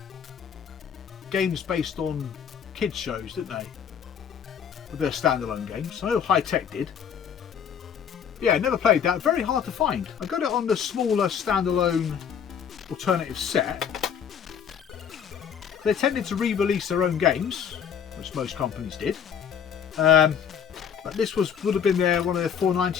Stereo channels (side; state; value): right; quieter; 7.9 dB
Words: games based on kids shows, didn't they? With their standalone games. I know High Tech did. Yeah, never played that. Very hard to find. I got it on the smaller standalone Alternative set. They tended to re-release their own games, which most companies did. But this would have been one of their